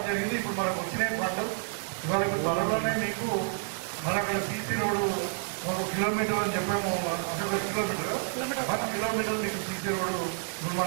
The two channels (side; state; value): left; silent; digital silence